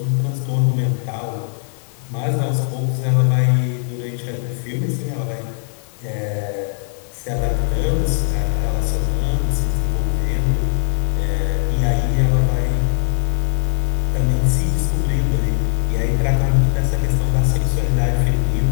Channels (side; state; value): right; silent; digital silence